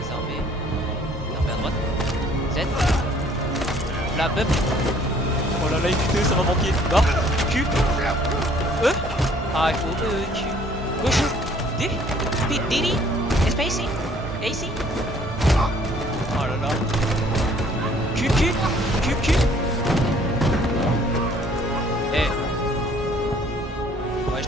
Désarmé à droite. Z. La bub. Oh là là, écoutez, ça va manquer. Barre. Q. E. Ah, il faut E, Q. Gauche. D. D. Space. AC. Oh là là. Q. Eh. Ouais, je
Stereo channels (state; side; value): normal; both; correlation 0.58